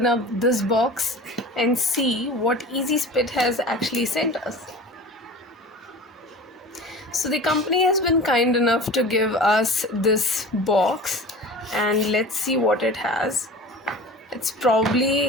up this box and see what Easy Spit has actually sent us. So the company has been kind enough to give us this box, and let's see what it has. It's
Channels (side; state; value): both; normal; correlation 0.38